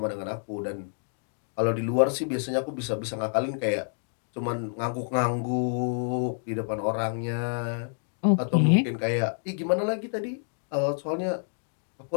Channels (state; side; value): silent; right; digital silence